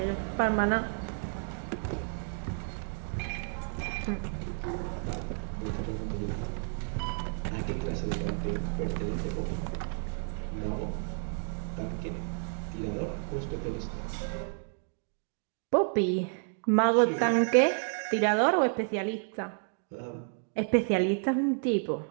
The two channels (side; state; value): left; silent; 57 dB below the other